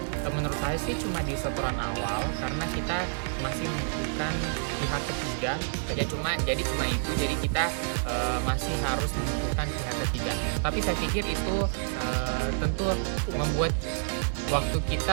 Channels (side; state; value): left; silent; digital silence